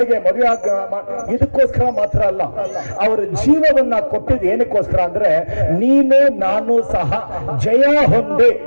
ಮದುವೆ ಇದಕ್ಕೋಸ್ಕರ ಮಾತ್ರ ಅಲ್ಲ. ಅವರ ಜೀವವನ್ನ ಕೊಟ್ಟಿದ್ದು ಏನಕ್ಕೋಸ್ಕರ ಅಂದ್ರೆ ನೀನು ನಾನು ಸಹ ಜಯ ಹೊಂದಿ,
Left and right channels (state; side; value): inverted; both; correlation -1.00